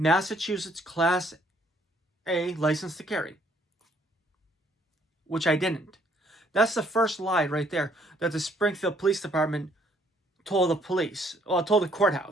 Class A license to carry, which I didn't. That's the first lie right there that the Springfield Police Department told the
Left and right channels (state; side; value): normal; both; correlation 0.65